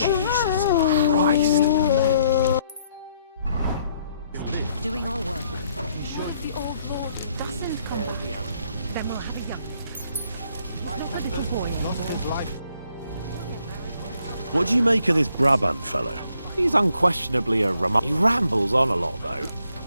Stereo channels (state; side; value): inverted; both; correlation -0.69